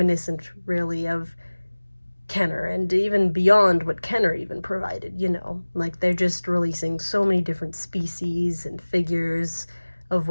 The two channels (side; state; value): both; inverted; correlation -1.00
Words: really, of Kenner, and even beyond what Kenner even provided, you know. Like, they're just releasing so many different species and figures of